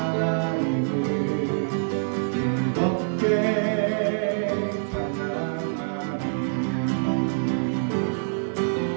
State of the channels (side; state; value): left; silent; digital silence